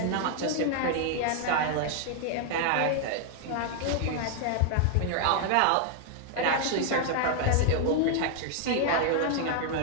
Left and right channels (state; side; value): different; both; correlation 0.00